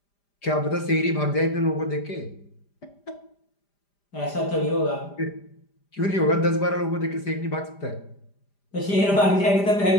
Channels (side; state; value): right; late; 5.0 ms